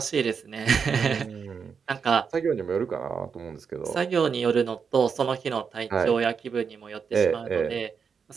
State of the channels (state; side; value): quieter; left; 6.2 dB